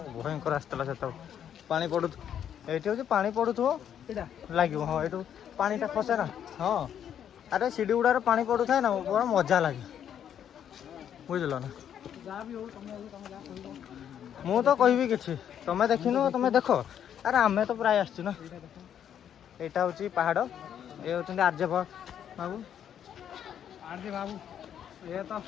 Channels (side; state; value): right; quieter; 9.3 dB